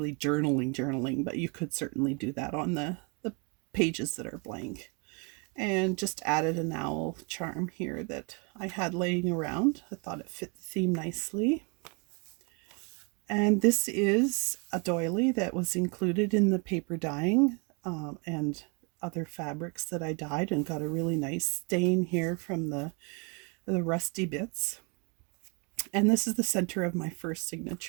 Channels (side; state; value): left; quieter; 33.5 dB